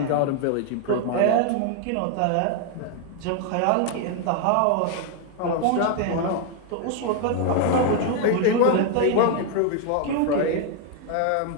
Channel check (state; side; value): different; both; correlation 0.00